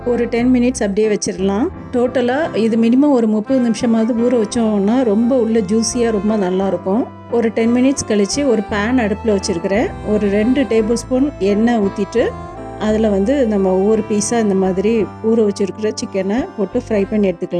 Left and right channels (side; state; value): both; identical; correlation 1.00